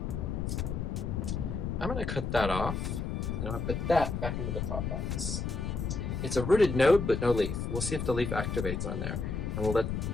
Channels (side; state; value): left; noise; rumble, 2 dB below the sound